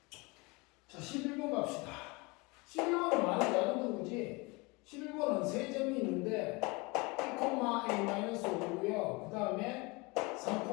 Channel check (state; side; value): quieter; right; 26.4 dB